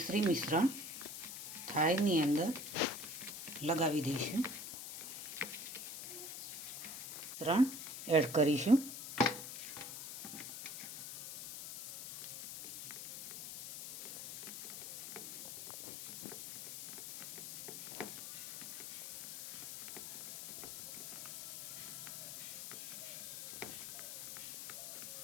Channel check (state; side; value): noise; left; hiss, 8 dB below the sound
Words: મિશ્રણ થાળીની અંદર લગાવી દઈશું. મિશ્રણ એડ કરીશું.